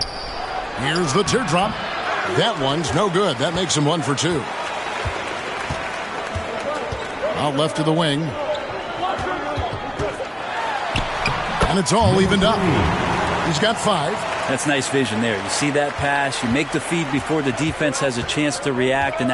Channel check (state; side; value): identical; both; correlation 1.00